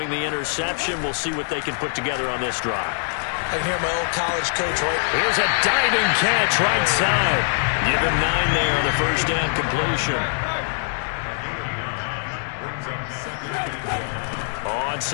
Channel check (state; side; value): silent; right; 63 dB below the other